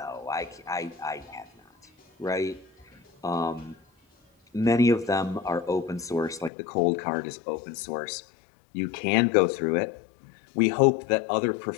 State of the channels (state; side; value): drops out; right; at 6.5 s